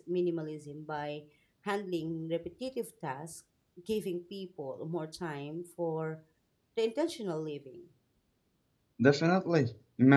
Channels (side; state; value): both; identical; correlation 1.00